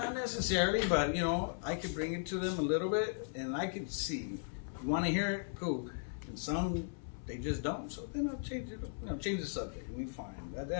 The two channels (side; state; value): right; silent; 53 dB below the other